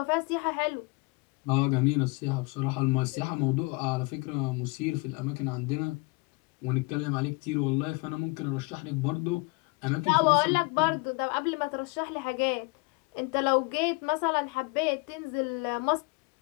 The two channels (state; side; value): quieter; right; 27.4 dB